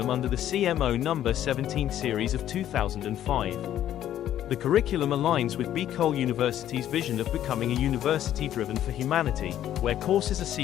under the CMO No. 17 series of 2005. The curriculum aligns with Bicol University's vision of becoming a university driven for humanity, where courses are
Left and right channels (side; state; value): right; quieter; 11.6 dB